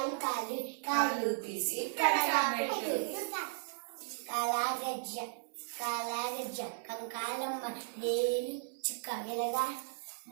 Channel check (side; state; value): left; silent; 54 dB below the other